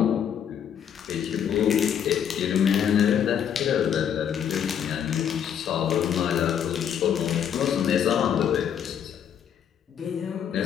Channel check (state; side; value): quieter; right; 8.7 dB